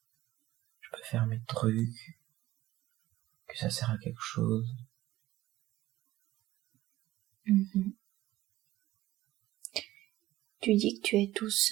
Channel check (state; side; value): quieter; left; 15.9 dB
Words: je peux faire mes trucs, que ça sert à quelque chose. Mhm. Tu dis que tu es tout